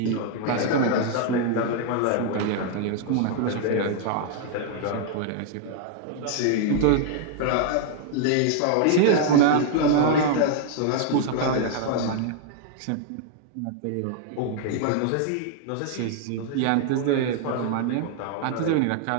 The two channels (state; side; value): different; both; correlation 0.00